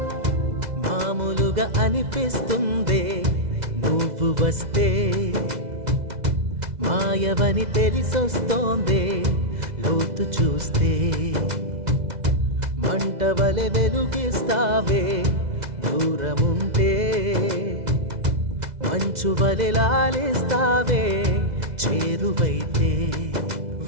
మామూలుగా అనిపిస్తుందే నువ్వు వస్తే, మాయవని తెలిసొస్తోందే లోతు చూస్తే, మంటవలె వెలుగిస్తావే దూరముంటే, మంచువలె లాలిస్తావే చేరువైతే,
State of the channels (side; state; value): left; late; 2.0 ms